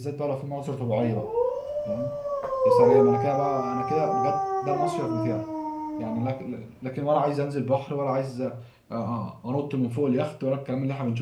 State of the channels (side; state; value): both; identical; correlation 1.00